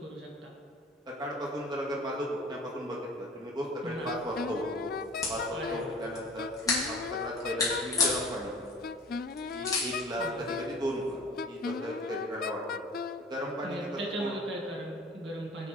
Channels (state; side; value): normal; both; correlation 0.44